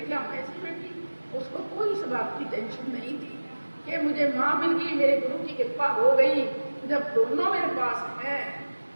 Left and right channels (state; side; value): inverted; both; correlation -1.00